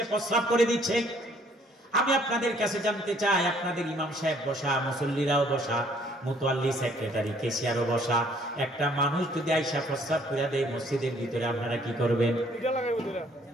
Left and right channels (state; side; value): normal; both; correlation 0.61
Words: প্রস্রাব করে দিচ্ছে। আমি আপনাদের কাছে জানতে চাই, আপনাদের ইমাম সাহেব বসা, মুসল্লিরাও বসা, মুতাওয়াল্লি সেক্রেটারি কেশিয়ারও বসা, একটা মানুষ যদি আইসা প্রস্রাব করে দেয় মসজিদের ভিতরে, আপনারা কি করবেন?